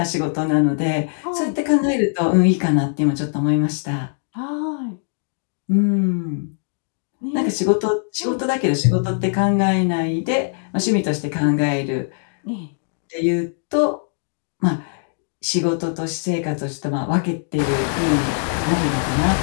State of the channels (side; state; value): right; silent; digital silence